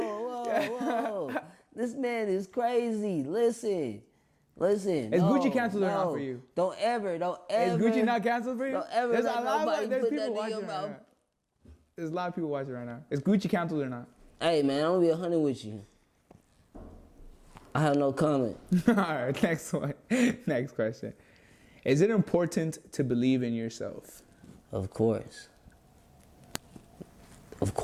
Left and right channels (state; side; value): identical; both; correlation 1.00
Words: Whoa. This man is crazy. Listen. Is Gucci canceled or not for you? Don't ever. Is Gucci not canceled for you? Don't ever There's let nobody there's put people that in watching your right mouth. now. There's a lot of people watching right now. Is Gucci canceled or not? Hey, man, I'm gonna be 100 with you. I have no comment. All right, next one. Next question. Is it important to believe in yourself? Of course.